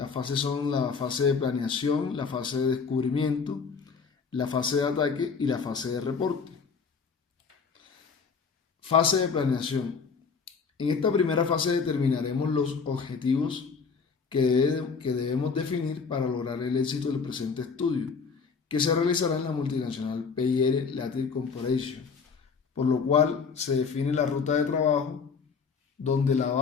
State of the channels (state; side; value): quieter; right; 5.4 dB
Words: fases son la fase de planeación, la fase de descubrimiento, la fase de ataque y la fase de reporte. Fase de planeación. En esta primera fase determinaremos los objetivos que debemos definir para lograr el éxito del presente estudio, que se realizará en la multinacional PIR Latin Corporation, por lo cual se define la ruta de trabajo donde la